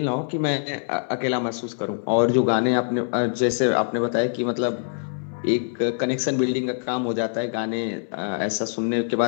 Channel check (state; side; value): silent; right; 60 dB below the other